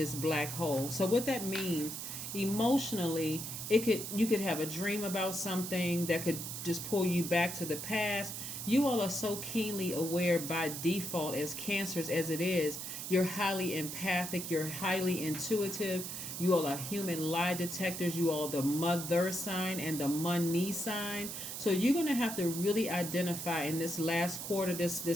black hole. So what that means emotionally, you could have a dream about something that could just pull you back to the past. You all are so keenly aware by default as cancers as it is. You're highly empathic, you're highly intuitive. You all are human lie detectors. You all the mother sign and the money sign. So you're going to have to really identify in this last quarter, this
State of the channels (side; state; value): right; noise; hiss, 6 dB below the sound